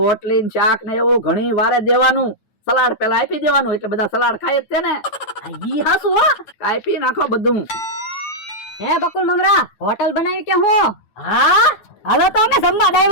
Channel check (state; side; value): late; right; 9.1 ms